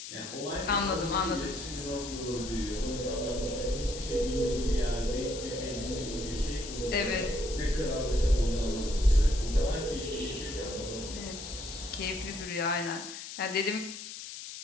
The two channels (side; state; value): left; noise; hiss, 10 dB below the sound